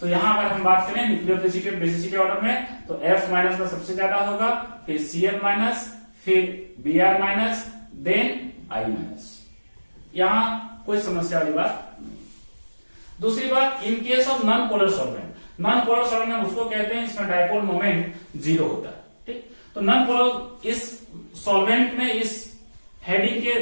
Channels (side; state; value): both; inverted; correlation -1.00